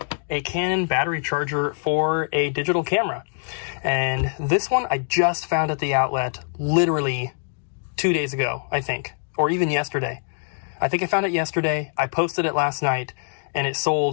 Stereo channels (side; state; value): right; silent; digital silence